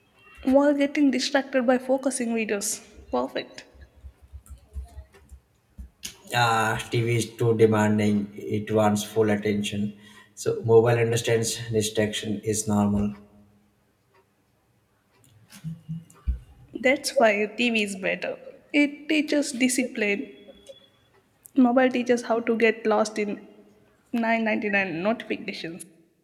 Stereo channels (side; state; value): both; identical; correlation 1.00